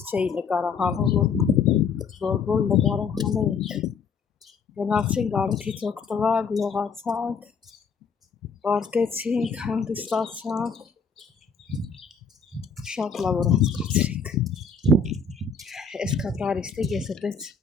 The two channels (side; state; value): right; quieter; 5.4 dB